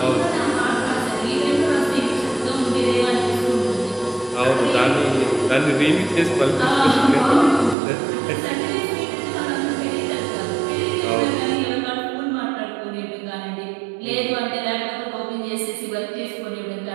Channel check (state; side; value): drops out; left; at 7.8 s